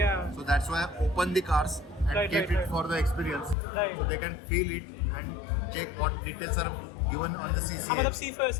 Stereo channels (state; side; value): drops out; right; at 3.6 s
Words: So that's why I opened the cars and Right, kept right. it for the experience. Right. So they can feel it and check what details are given on the CCA. मतलब see for